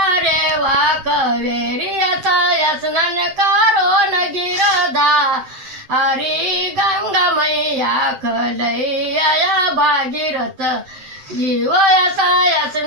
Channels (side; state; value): left; late; 7.7 ms